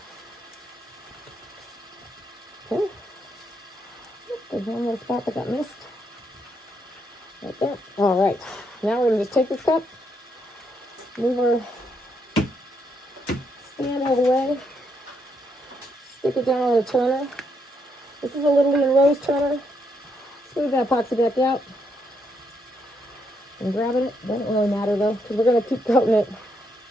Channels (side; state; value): both; normal; correlation 0.77